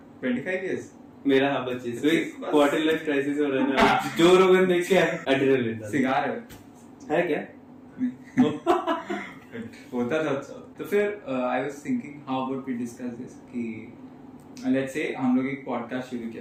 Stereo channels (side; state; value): both; identical; correlation 1.00